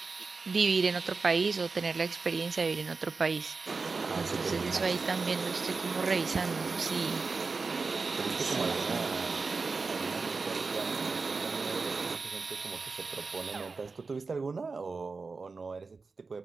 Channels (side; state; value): left; quieter; 4.3 dB